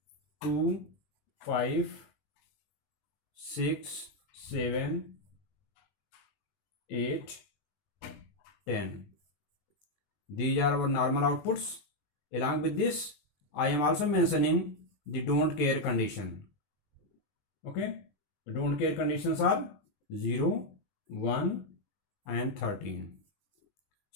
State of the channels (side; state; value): right; late; 20 ms